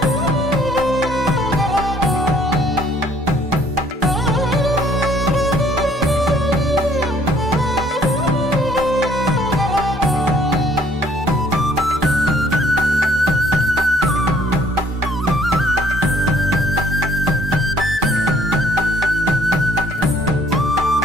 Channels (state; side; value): normal; both; correlation 0.61